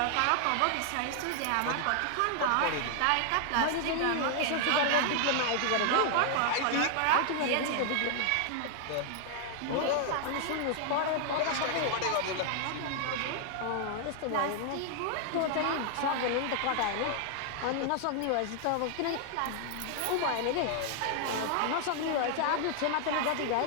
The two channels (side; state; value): both; different; correlation 0.00